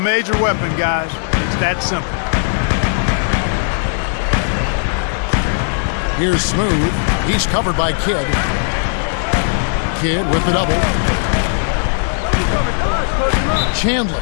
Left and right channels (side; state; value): right; silent; 63 dB below the other